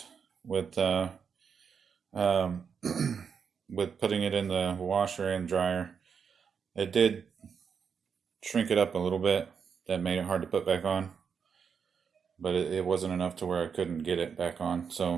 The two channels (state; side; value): quieter; left; 6.5 dB